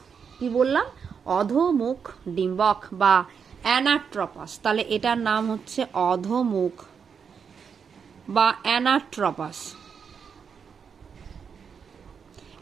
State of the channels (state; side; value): quieter; left; 6.5 dB